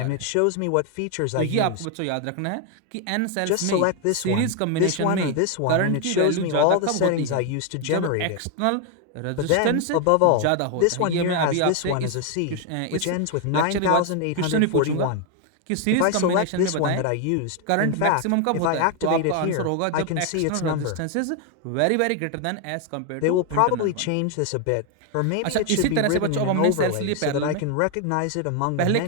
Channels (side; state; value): both; different; correlation 0.01